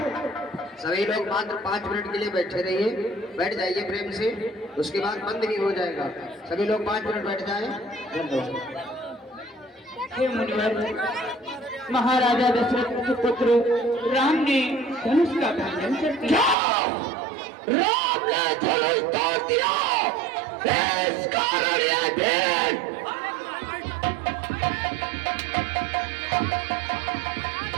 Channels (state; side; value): drops out; left; at 16.6 s